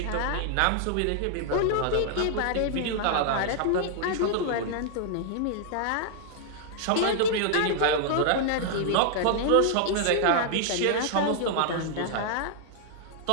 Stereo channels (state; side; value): different; both; correlation -0.01